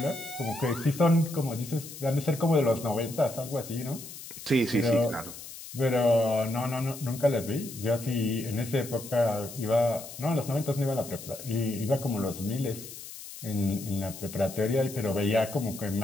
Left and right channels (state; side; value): noise; left; hiss, 13 dB below the sound